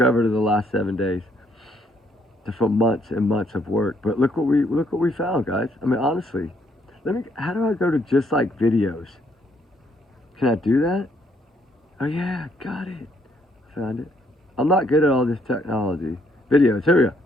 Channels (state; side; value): normal; both; correlation 0.70